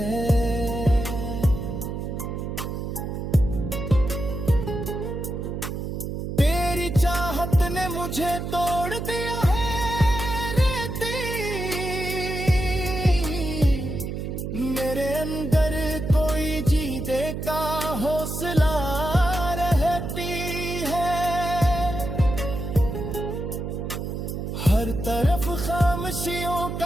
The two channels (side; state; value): right; noise; hum, 5 dB below the sound